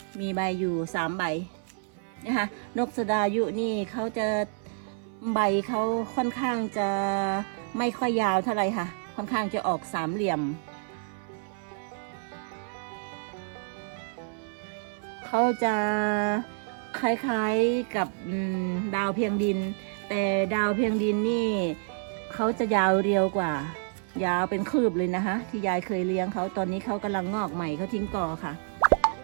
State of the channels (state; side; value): silent; left; 59 dB below the other